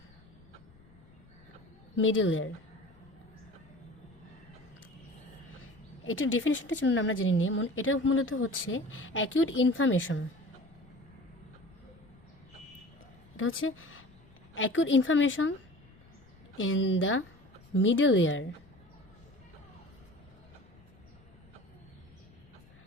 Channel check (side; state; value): left; noise; rumble, 25 dB below the sound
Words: মিডল ইয়ার, এটার ডেফিনেশনটা জন্য আমরা জেনে নিই। এটা মূলত হচ্ছে অ্যাকিউট ইনফ্লামেশন। এটা হচ্ছে acute inflammation in the middle year